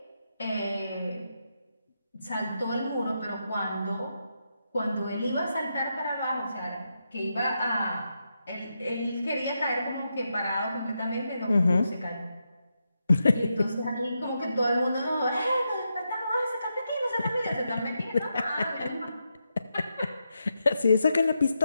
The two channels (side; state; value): both; inverted; correlation -0.85